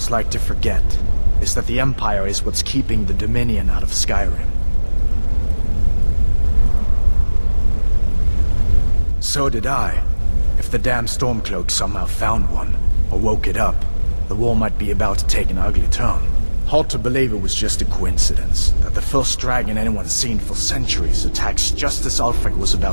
like to forget is that the Empire is what's keeping the Dominion out of Skyrim. So did I. If the damn Stormcloak somehow found one, or woke it up, the war might be about to take an ugly turn. Hard to believe it was just a coincidence, that the first dragon anyone's seen for centuries attacks just as Ulfric was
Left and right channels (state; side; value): inverted; both; correlation -1.00